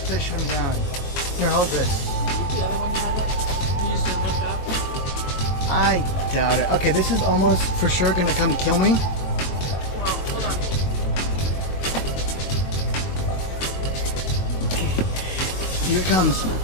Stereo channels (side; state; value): right; late; 22 ms